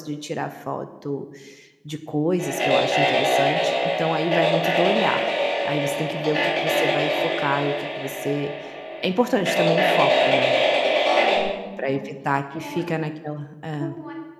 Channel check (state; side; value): identical; both; correlation 1.00